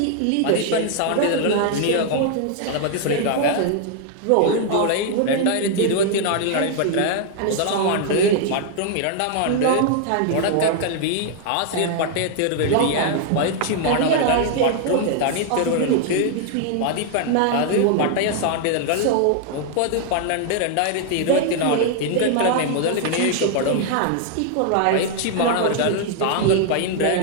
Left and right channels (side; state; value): both; different; correlation 0.00